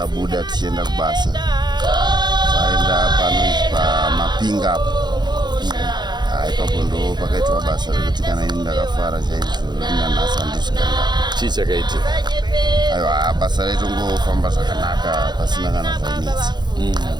tichienda kubasa taenda panonzi paMapinga apo ipapo ndo pakaitwa basa rekuti kana ini ndakafara chaizvo nanhasi handisvikanga. Chii chakaitika? Aiwa basa raitongofamba zvakanaka pasina kana zvainetsa.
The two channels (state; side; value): late; left; 0.21 ms